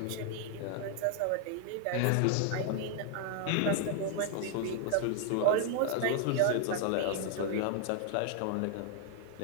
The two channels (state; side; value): different; both; correlation 0.00